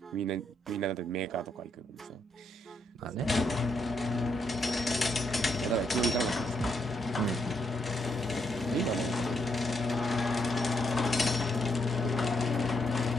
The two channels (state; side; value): normal; both; correlation 0.76